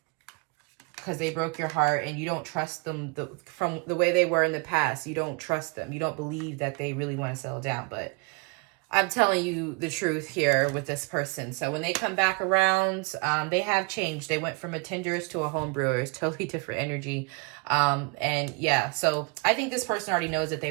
Because they broke your heart and you don't trust them from the way they were in the past. You don't trust them. You don't believe that they really want to settle down. But I'm telling you the truth here with this person. So when they come back around, they have changed. They went from a Tinder's to a home brewers, totally different energy. And yeah, so I think this person already knows that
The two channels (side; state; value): left; quieter; 32.1 dB